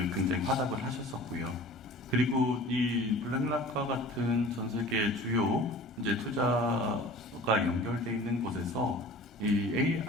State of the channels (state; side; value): normal; both; correlation 0.43